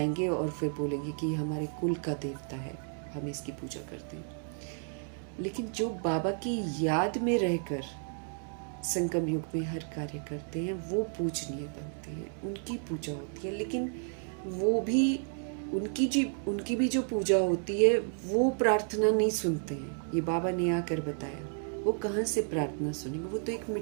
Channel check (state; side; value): silent; left; 56 dB below the other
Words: और फिर बोलेंगे कि हमारे कुल का देवता है, हम इसकी पूजा करते हैं। लेकिन जो बाबा की याद में रहकर संगम युग में हर कार्य करते हैं, वो पूजनीय बनते हैं, उनकी पूजा होती है। लेकिन वो भी उनकी भी जो पूजा होती है वो प्रार्थना नहीं सुनते हैं। ये बाबा ने आकर बताया, वो कहाँ से प्रार्थना सुनेंगे? वो तो एक